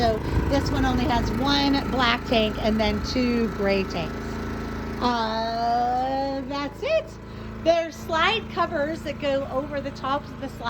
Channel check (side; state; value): both; identical; correlation 1.00